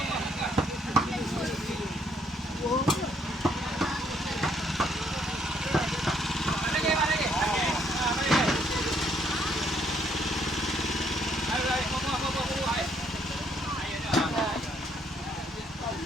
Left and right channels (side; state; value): both; normal; correlation 0.69